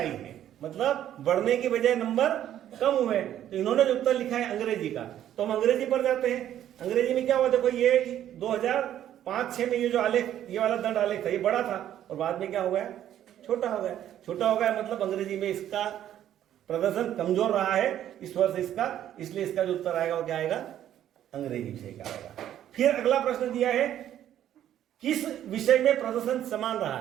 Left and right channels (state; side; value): quieter; left; 11.3 dB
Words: है, मतलब बढ़ने की बजाय नंबर कम हुए। तो इन्होंने जो उत्तर लिखा है अंग्रेजी का, तो हम अंग्रेजी पर जाते हैं। अंग्रेजी में क्या हुआ, देखो ये 2005-6 में ये जो आलेख, ये वाला दंड आलेख था, ये बड़ा था और बाद में क्या हो गया छोटा हो गया, मतलब अंग्रेजी में इसका प्रदर्शन कमजोर रहा है इस वर्ष इसका, इसलिए इसका जो उत्तर आएगा वो क्या आएगा अंग्रेजी विषय का आएगा। फिर अगला प्रश्न दिया है किस विषय में प्रदर्शन समान रहा